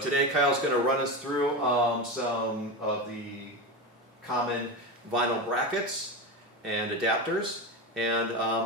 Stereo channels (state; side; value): normal; both; correlation 0.20